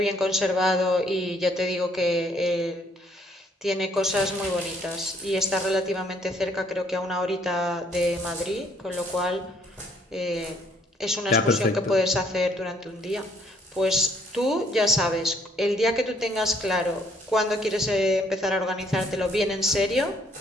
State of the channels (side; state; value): both; normal; correlation 0.66